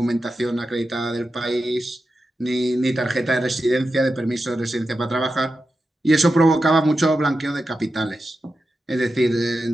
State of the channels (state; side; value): normal; both; correlation 0.90